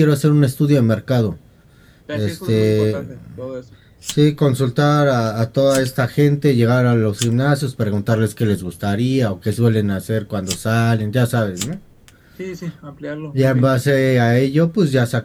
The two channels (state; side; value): identical; both; correlation 1.00